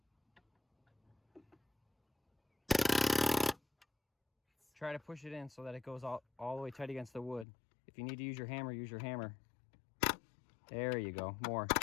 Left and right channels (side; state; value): right; drops out; at 7.5 s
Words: Try to push it in so that it goes all the way tight against the wood. If you need to use your hammer, use your hammer. There you go. More.